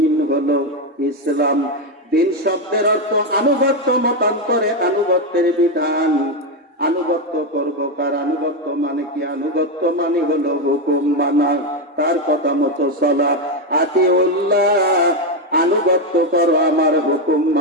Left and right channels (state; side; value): normal; both; correlation 0.08